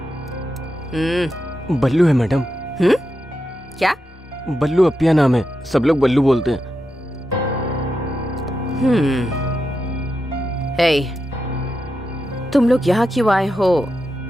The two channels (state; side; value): normal; both; correlation 0.87